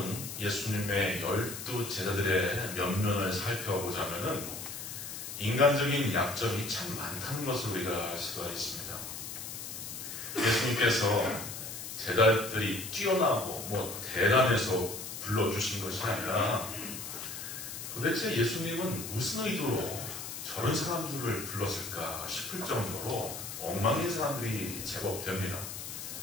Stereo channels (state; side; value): noise; left; hiss, 8 dB below the sound